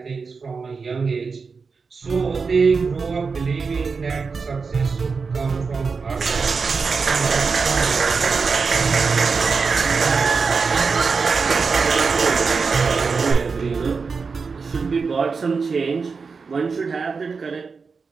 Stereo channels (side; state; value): left; quieter; 4.9 dB